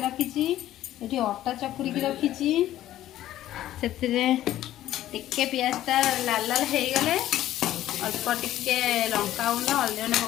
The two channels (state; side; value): quieter; right; 13.5 dB